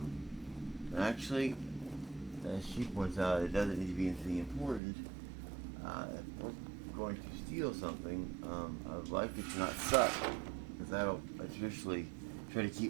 Actually, as she points out, it doesn't need to be anything important. If we're going to steal something, I would like it to not suck, because I traditionally try to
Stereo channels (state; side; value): drops out; left; at 4.8 s